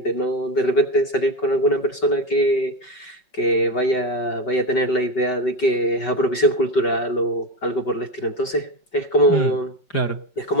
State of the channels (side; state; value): right; late; 5.3 ms